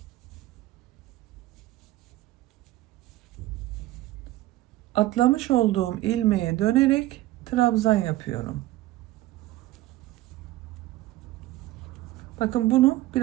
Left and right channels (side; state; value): left; quieter; 16.3 dB